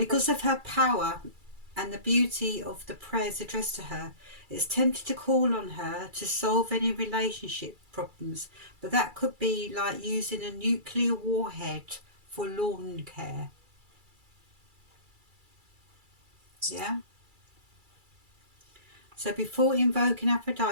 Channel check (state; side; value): late; left; 2.3 ms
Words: of her power and the beauty of the prayers addressed to her, it's tempted to call on her to solve any relationship problems, but that could be like using a nuclear warhead for lawn care. Yeah? So before invoking